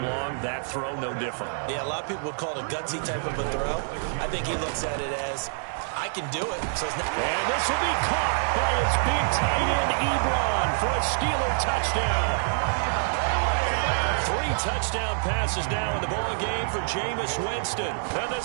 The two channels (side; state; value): left; silent; digital silence